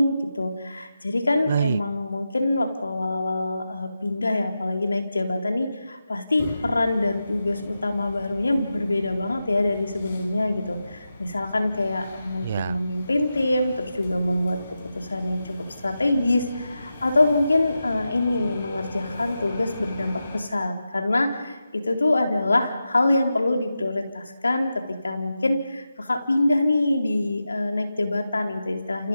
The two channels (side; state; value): both; inverted; correlation -0.90